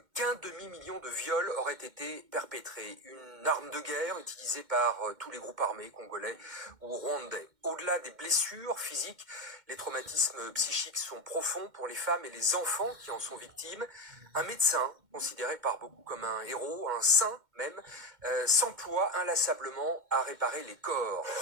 qu'un demi-million de viols auraient été perpétrés. Une arme de guerre utilisée par tous les groupes armés congolais ou rwandais. Au-delà des blessures physiques, les traumatismes psychiques sont profonds pour les femmes et les enfants qui en sont victimes. Un médecin, considéré par beaucoup comme un héros, un saint même, s'emploie inlassablement à réparer les corps.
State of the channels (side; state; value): left; late; 2.1 ms